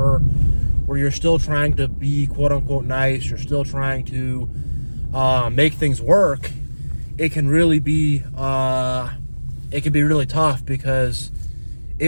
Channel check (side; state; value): both; inverted; correlation -1.00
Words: where you're still trying to be quote unquote nice, you're still trying to make things work, it can really be really tough, because